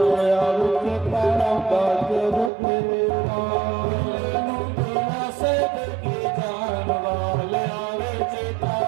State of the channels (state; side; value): drops out; left; at 2.5 s